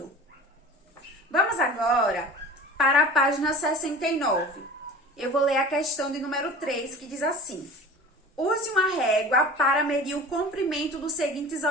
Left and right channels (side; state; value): both; normal; correlation 0.39